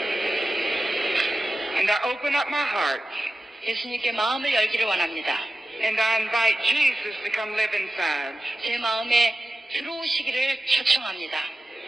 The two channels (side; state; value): both; normal; correlation 0.94